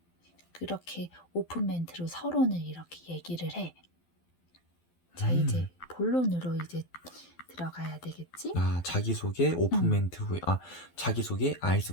그렇게 오픈 멘트로 서론을 이렇게 얘기를 해. 자, 이제 본론으로 이제 들어가야 되겠지? 자기소개 오픈 음. 멘트 후에 자기소개 아이스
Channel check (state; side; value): late; right; 12 ms